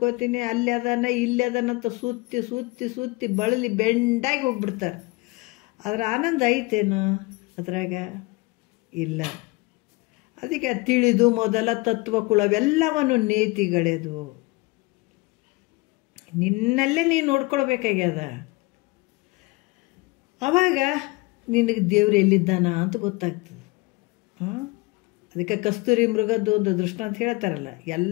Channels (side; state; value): right; quieter; 23.9 dB